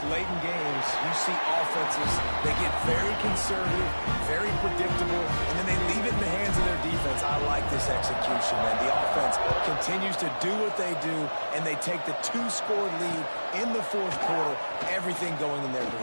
late in games, you see offenses, they get very conservative, very predictable, and then they leave it in the hands of their defense. I like this execution, man. The offense continues to do what they do, and they take the 2-score lead in the fourth quarter, everything going in their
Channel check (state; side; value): inverted; both; correlation -1.00